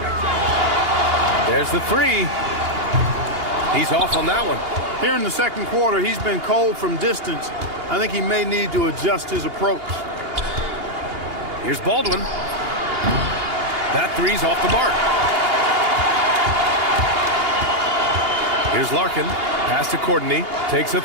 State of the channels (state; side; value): late; left; 2.8 ms